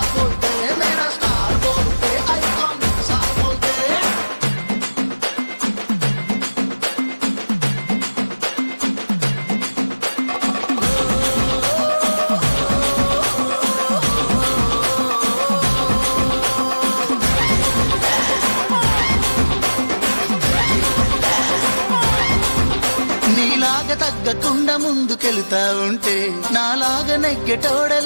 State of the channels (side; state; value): both; inverted; correlation -1.00